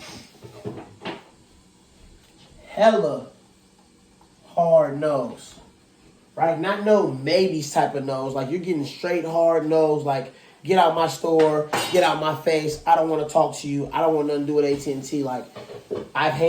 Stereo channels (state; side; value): identical; both; correlation 1.00